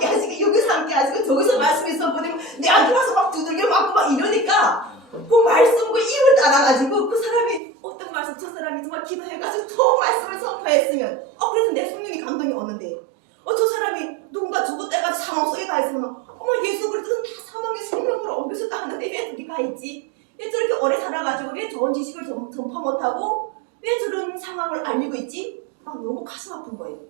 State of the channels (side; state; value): left; drops out; at 7.6 s